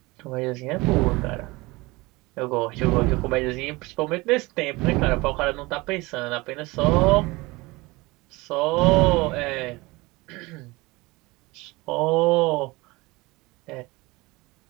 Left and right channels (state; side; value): quieter; left; 22.7 dB